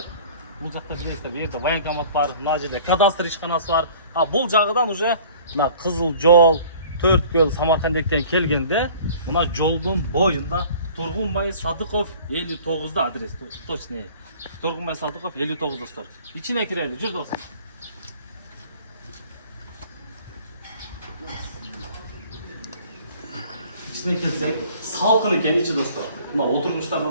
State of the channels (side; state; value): both; inverted; correlation -0.49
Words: Бұл жақта білесіздер, жерде военкомат бар, мына жерде кадастр ишканасы бар. Бұл жағыдан уже мына Қызыл жол, Төрткөл, Самаркандектен келгенде, мына жолдың бойында Тұрғынбай Садықов 59-да адрес, точно. Тұрғынбай Садықов 59-да стор. İçine kireyli, жүр достар. İçine kelsek, salkın eкен içi dostlar. Mына отырғыштарда